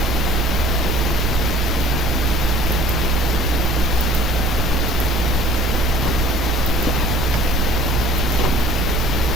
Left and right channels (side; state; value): both; normal; correlation 0.50